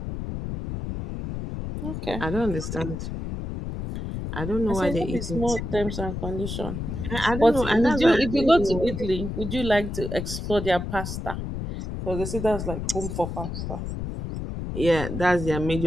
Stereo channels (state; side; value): noise; left; rumble, 5 dB below the sound